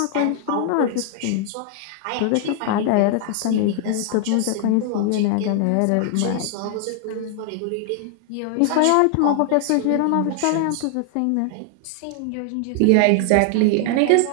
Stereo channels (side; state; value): both; different; correlation 0.00